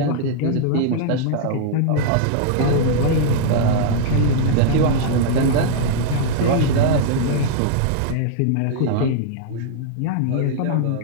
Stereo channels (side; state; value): both; different; correlation -0.01